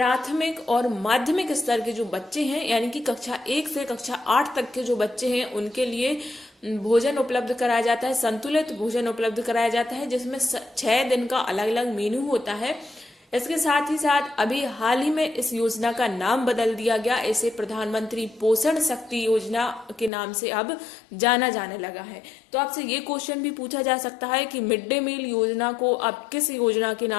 और माध्यमिक स्तर के जो बच्चे हैं यानी कि कक्षा 1 से कक्षा 8 तक के जो बच्चे हैं उनके लिए भोजन उपलब्ध कराया जाता है, संतुलित भोजन उपलब्ध कराया जाता है जिसमें 6 दिन का अलग अलग मेनू होता है। इसके साथ ही साथ अभी हाल ही में इस योजना का नाम बदल दिया गया, इसे प्रधानमंत्री पोषण शक्ति योजना के नाम से अब जाना जाने लगा है। तो आपसे ये क्वेश्चन भी पूछा जा सकता है कि मिड डे मील योजना को अब किस योजना के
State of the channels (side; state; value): right; drops out; at 20.1 s